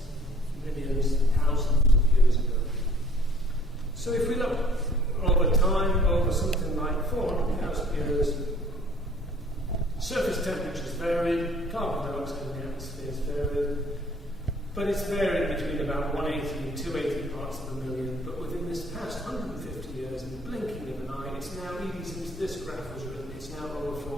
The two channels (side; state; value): both; normal; correlation 0.55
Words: millions, thousands of years ago. So if we look over time, over something like 400,000 years, surface temperatures varied, carbon dioxide in the atmosphere has varied, but it's varied between about 180 and 280 parts per million. But within this past 150 years, in the blinking of an eye, it's now, even since this graph was written, it's now over